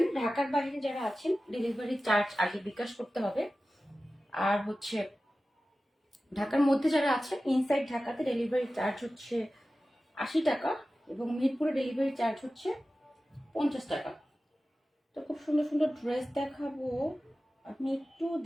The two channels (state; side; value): normal; both; correlation 0.95